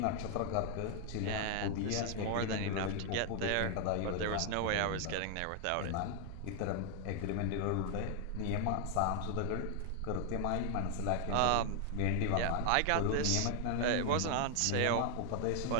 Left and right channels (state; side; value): different; both; correlation 0.00